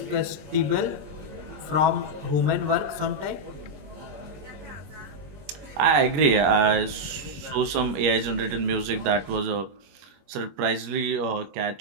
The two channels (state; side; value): late; left; 21 ms